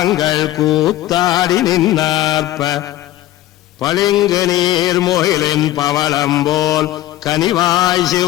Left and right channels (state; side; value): quieter; right; 14.9 dB